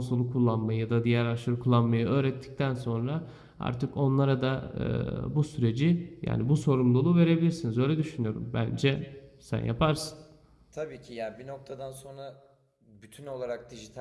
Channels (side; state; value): both; identical; correlation 1.00